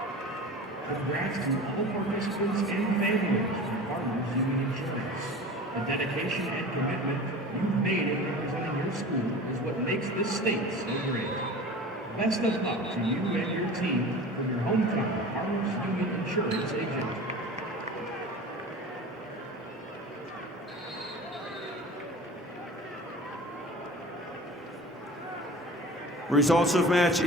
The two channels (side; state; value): both; normal; correlation 0.37